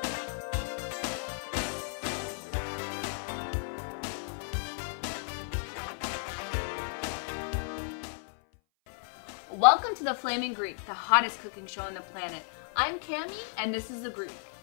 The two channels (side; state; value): right; silent; 55 dB below the other